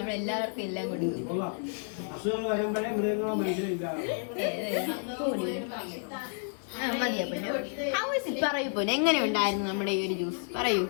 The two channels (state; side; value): silent; right; 57 dB below the other